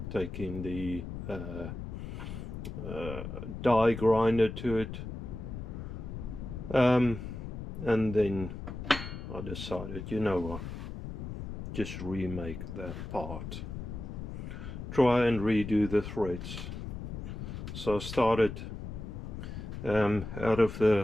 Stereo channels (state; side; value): noise; left; rumble, 7 dB below the sound